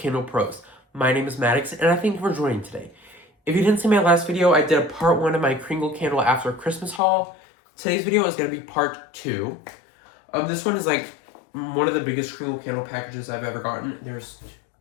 Pros. My name is Maddox and I thank you for joining today. If you didn't see my last video, I did a part 1 of my Kringle Candle after Christmas haul. Today's video is going to be part 2. This one is like one of the biggest Kringle Candle packages I've ever gotten. There's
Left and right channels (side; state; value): right; drops out; at 7.0 s